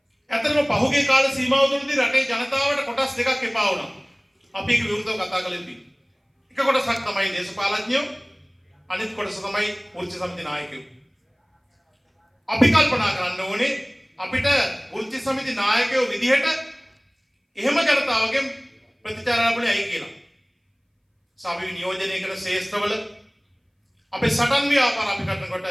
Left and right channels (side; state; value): both; identical; correlation 1.00